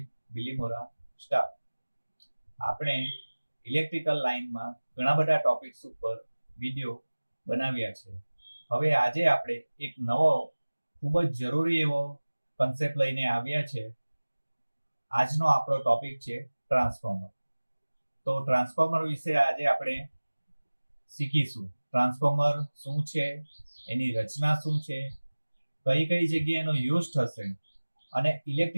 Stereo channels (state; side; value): inverted; both; correlation -1.00